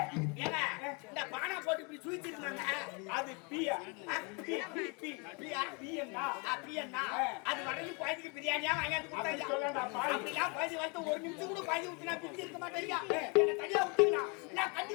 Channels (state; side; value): quieter; right; 32.4 dB